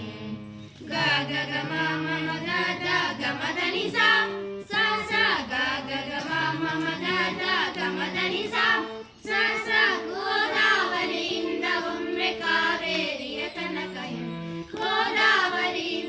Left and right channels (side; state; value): both; identical; correlation 1.00